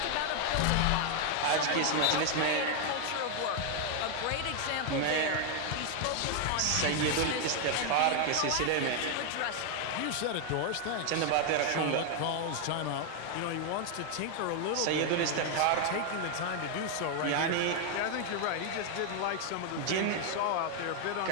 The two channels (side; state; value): both; different; correlation 0.00